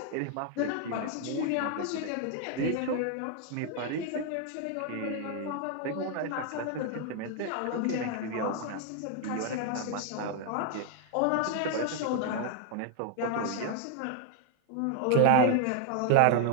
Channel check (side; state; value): both; different; correlation 0.00